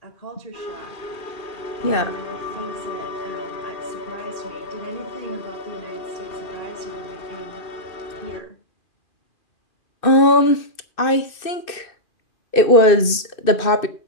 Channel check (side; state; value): right; late; 2.6 ms